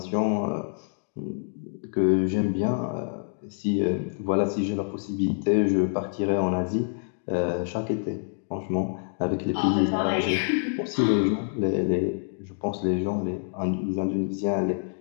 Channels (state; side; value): silent; right; 60 dB below the other